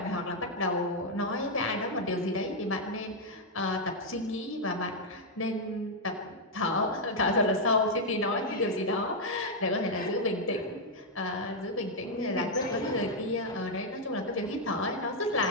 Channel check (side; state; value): both; normal; correlation -0.02